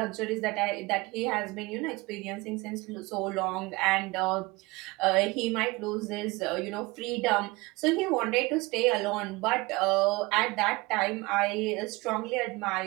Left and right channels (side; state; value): left; quieter; 23.2 dB